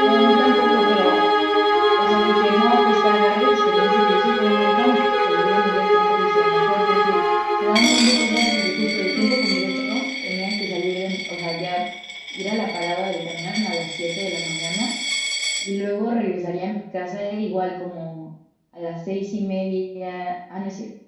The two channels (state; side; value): identical; both; correlation 1.00